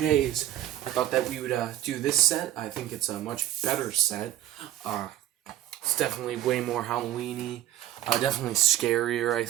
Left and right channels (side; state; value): left; quieter; 12.9 dB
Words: I thought that we would do this set. I think it's a much better set. It's definitely way more Halloween-y. Definitely scarier, I